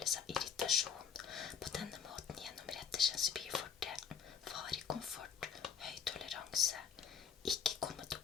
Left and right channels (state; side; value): quieter; right; 7.3 dB